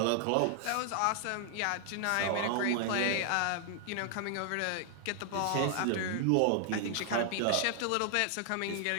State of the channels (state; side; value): different; both; correlation 0.00